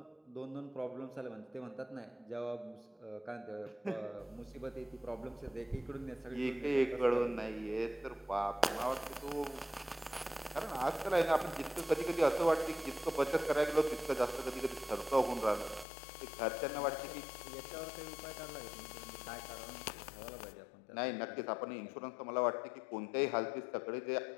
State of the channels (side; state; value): right; drops out; at 15.9 s